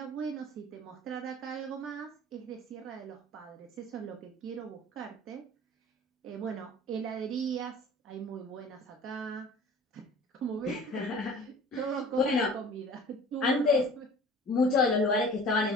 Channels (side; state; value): both; normal; correlation 0.45